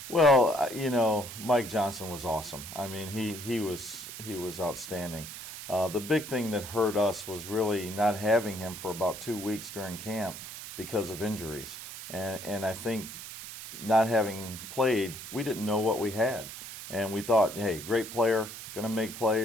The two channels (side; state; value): right; noise; hiss, 11 dB below the sound